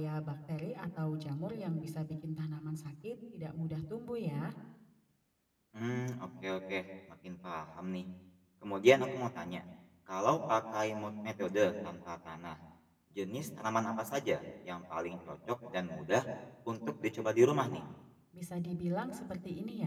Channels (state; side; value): identical; both; correlation 1.00